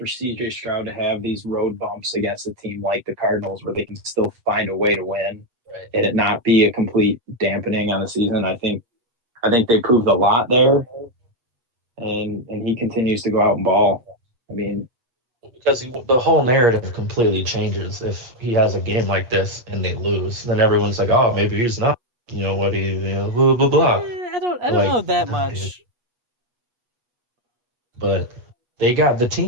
CJ Stroud to have these road bumps against a team like the Cardinals where they can still find a way to win Right. and it not be a complete dampening on the season. I think they proved a lot there, and he continues to go out and ball. I mean, Because the whole narrative completely changes if he has a game like this and they lose. Then everyone's like, "Oh, maybe he's not. You know what he, blah blah blah." I don't Like, know that nah, dude. much. But they got the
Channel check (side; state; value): left; late; 8.3 ms